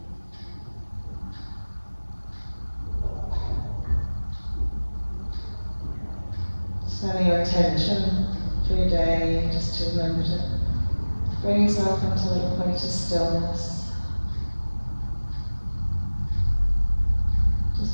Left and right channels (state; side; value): inverted; both; correlation -1.00